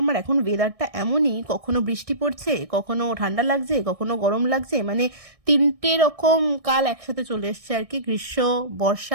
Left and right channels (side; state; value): left; late; 1.6 ms